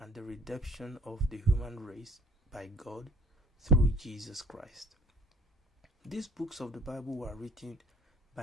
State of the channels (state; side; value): normal; both; correlation 0.51